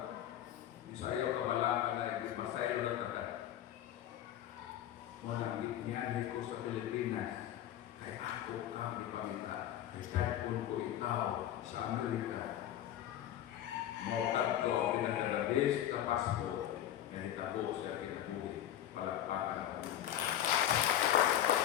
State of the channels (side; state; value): right; quieter; 11.7 dB